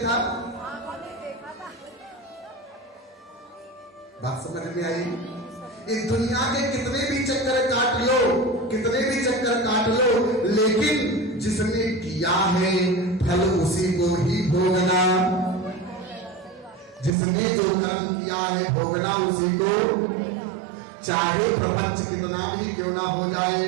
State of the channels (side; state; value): left; drops out; at 17.2 s